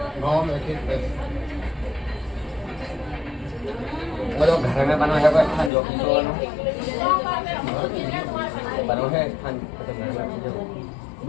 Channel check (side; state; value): right; drops out; at 5.7 s